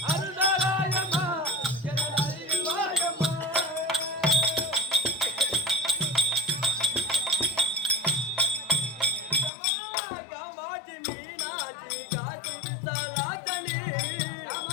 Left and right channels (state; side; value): drops out; right; at 9.5 s